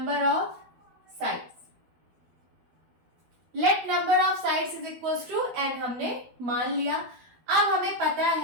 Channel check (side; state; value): left; late; 12 ms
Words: of sides. Let number of sides is equals to n हमने मान लिया। अब हमें पता